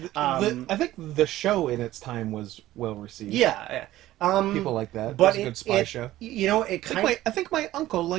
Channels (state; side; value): quieter; left; 15.1 dB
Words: I think the show in its time was well received. Yeah. People like that. But It was a good spy show. It kind of. I think my uncle